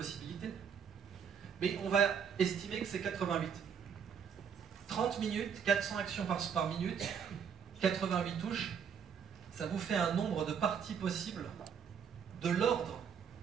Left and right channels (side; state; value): left; quieter; 7.3 dB